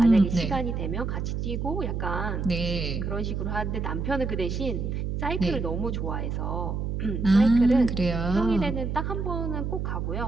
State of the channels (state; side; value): noise; right; hum, 2 dB below the sound